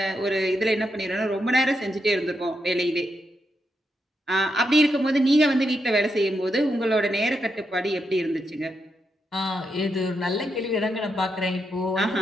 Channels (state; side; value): normal; both; correlation 0.83